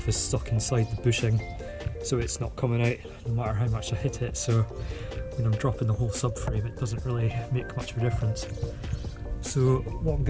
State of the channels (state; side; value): identical; both; correlation 1.00